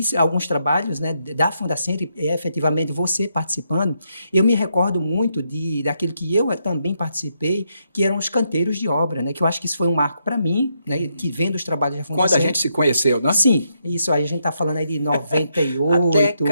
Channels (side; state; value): both; inverted; correlation -0.79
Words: alguns trabalhos, né, da Fundacentro e efetivamente você participando, eu me recordo muito daquilo que eu também participei, que eram os canteiros de obra, né, que eu acho que isso foi um marco para mim, né, que vendo os trabalhos da Fundacentro. Quando a gente se conheceu, né? Sim, isso aí a gente está falando aí de 98.